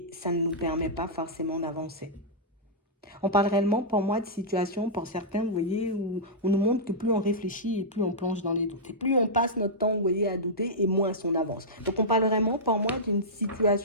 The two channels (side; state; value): both; normal; correlation -0.12